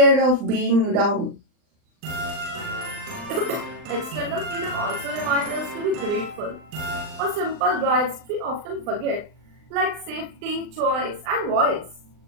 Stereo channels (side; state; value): left; late; 39 ms